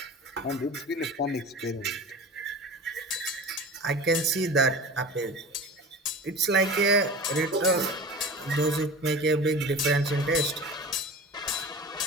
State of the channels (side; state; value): both; normal; correlation 0.35